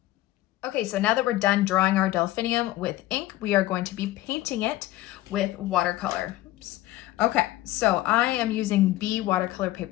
Okay, so now that we're done drawing our delphinium with ink, we are going to be painting it with watercolor. Oops. Okay, so I am using B watercolor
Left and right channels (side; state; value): right; quieter; 16.3 dB